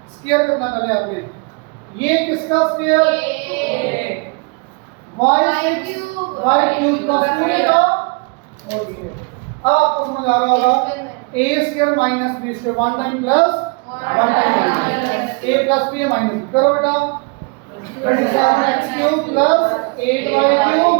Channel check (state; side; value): quieter; left; 32.3 dB